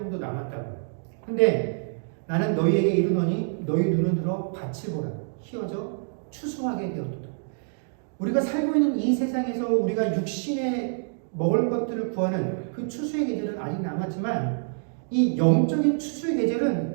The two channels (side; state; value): left; silent; digital silence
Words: 남았다고. 근데 나는 너희에게 이르노니 너희 눈을 들어 밭을 보라. 희어져 추수하게 되었도다. 우리가 살고 있는 이 세상에서 우리가 육신에 먹을 것들을 구하는 그 추수의 계절은 아직 남았지만, 이 영적인 추수의